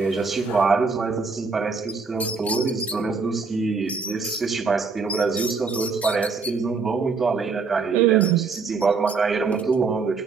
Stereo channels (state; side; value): quieter; left; 4.7 dB